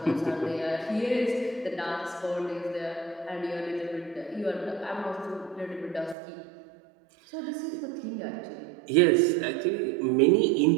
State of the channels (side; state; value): left; drops out; at 6.2 s